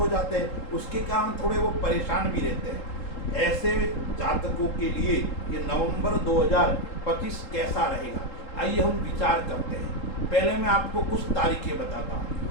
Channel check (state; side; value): late; right; 3.8 ms